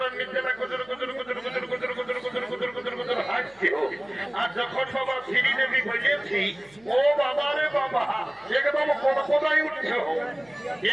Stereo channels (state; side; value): noise; right; hum, 29 dB below the sound